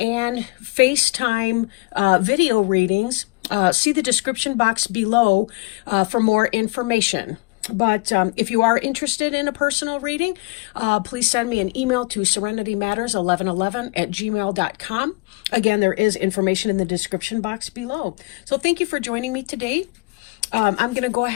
FaceTime video readings. See the description box below for more information. But if you are interested in a personal reading, please send me an email to serenitymatters1111@gmail.com. Again, there is information in the description box below. So thank you for joining me today. I'm going to go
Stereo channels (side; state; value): right; quieter; 26.4 dB